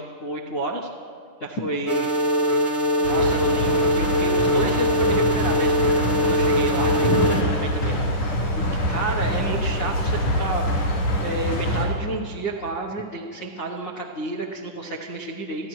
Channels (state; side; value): late; right; 10 ms